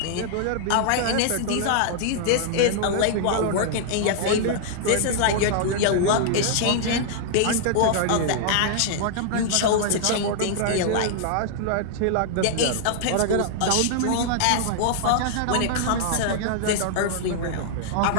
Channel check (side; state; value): both; different; correlation -0.01